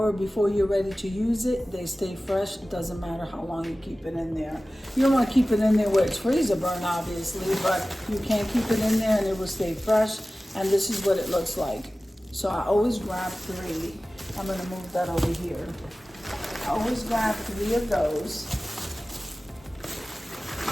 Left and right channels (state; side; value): normal; both; correlation 0.96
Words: before you're ready to use it, they stay fresh. It doesn't matter how long you keep it in there. You don't want to keep it in there where it's freezer burn, obviously, but you can keep it in there and it will stay fresh. And this is what it looks like. So I always grab 3. I'm gonna move that over here. I always grab 3 of those.